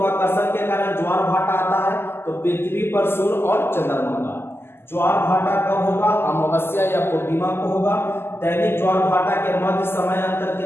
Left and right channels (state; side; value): late; right; 0.12 ms